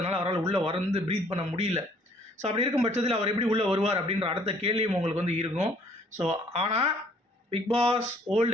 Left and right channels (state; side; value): normal; both; correlation 0.60